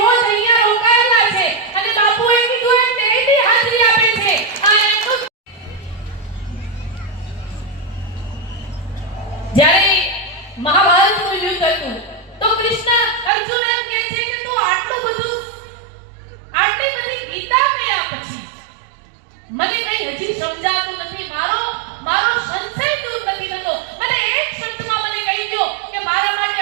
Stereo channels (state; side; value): drops out; left; at 13.3 s